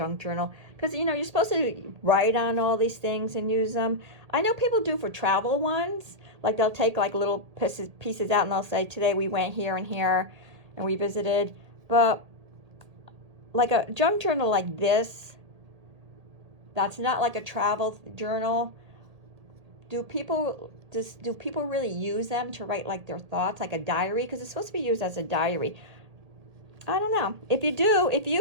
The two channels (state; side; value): late; left; 1.8 ms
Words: journal, because you know you're supposed to write on all these things and use them. I know people do for travel ones, like they'll take like little pieces out and they'll say today we went here and here and we visited. But like a junk journal like this, that's not like a travel journal. Do people really use them to write like their thoughts, like a diary? Because it's supposed to be used as a diary. I don't know. If